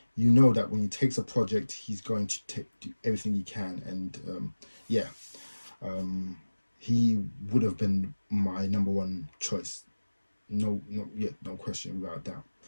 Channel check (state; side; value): inverted; both; correlation -1.00